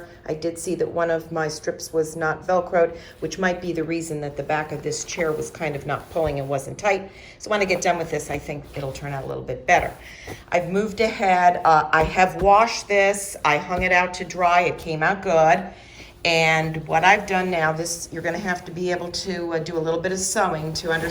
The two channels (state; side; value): identical; both; correlation 1.00